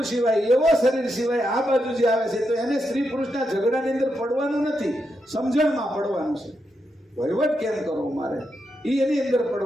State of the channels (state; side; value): normal; both; correlation 0.84